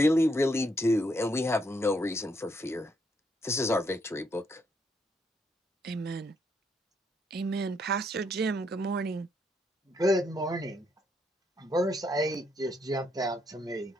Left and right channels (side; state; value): both; normal; correlation 0.74